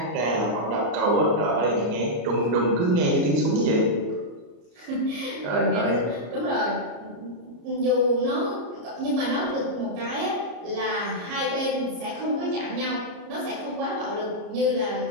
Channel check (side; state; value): left; late; 34 ms